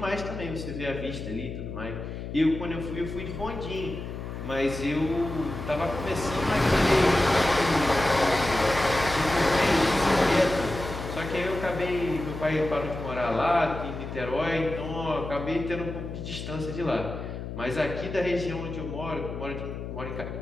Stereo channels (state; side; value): noise; left; hum, 7 dB below the sound